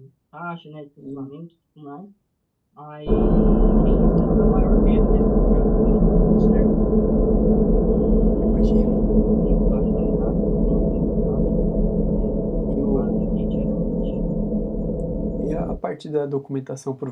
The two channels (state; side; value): identical; both; correlation 1.00